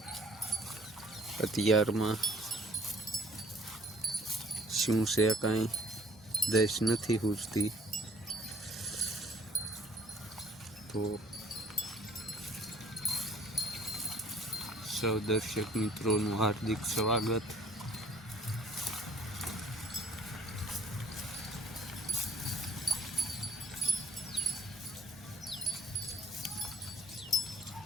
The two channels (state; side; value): normal; both; correlation 0.57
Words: અત્યારમાં શું છે કાંઈ દેશ નથી પૂછતી. તો સૌ દર્શક મિત્રોનું હાર્દિક સ્વાગત.